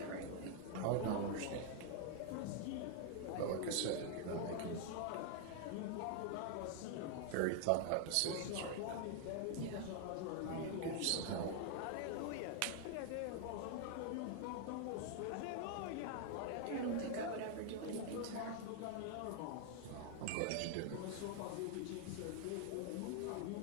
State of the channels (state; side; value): different; both; correlation 0.00